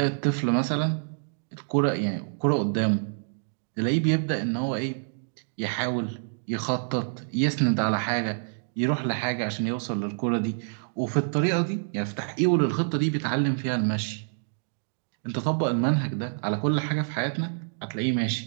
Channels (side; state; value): left; silent; digital silence